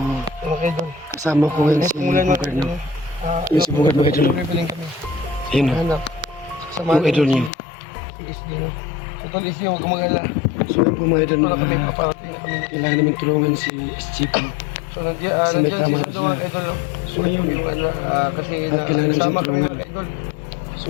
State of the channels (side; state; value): right; drops out; at 7.5 s